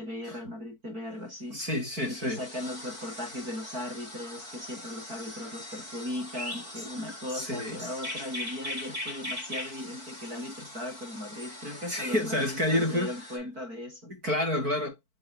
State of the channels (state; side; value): late; left; 4.5 ms